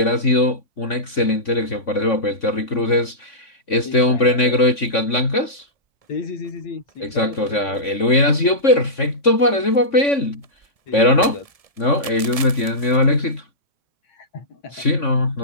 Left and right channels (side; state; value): left; late; 1.7 ms